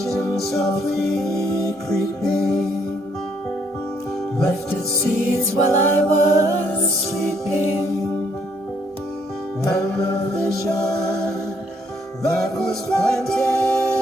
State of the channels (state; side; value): normal; both; correlation 0.69